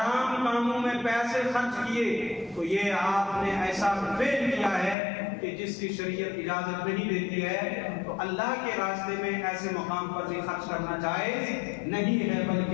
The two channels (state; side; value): drops out; right; at 5.0 s